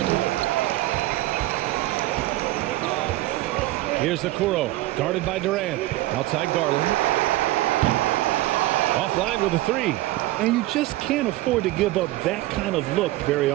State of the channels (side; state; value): left; quieter; 17.4 dB